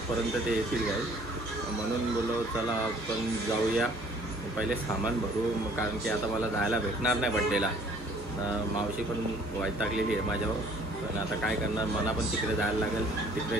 ते येतील गाई. म्हणून बोललो चला आपण जाऊया, पहिले सामान भरू. कारण की आता मला जायला भेटणार नाही बड्डेला. मावशी पण वैतागलेली आहे माझ्यावर. पण आता काय करणार, मला पण तिकडे जायला लागेल. तिकडे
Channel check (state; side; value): normal; both; correlation 0.56